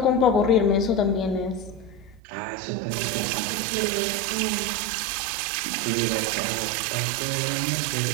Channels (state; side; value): drops out; left; at 2.2 s